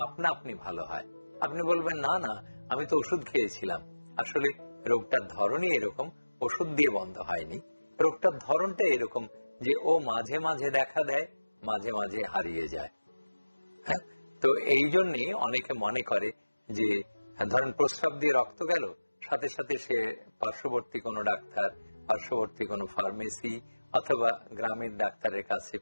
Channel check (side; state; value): both; inverted; correlation -1.00